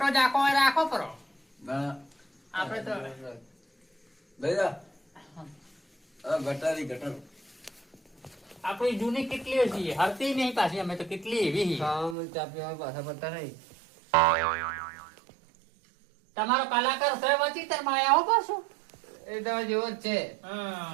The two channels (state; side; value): drops out; left; at 12.2 s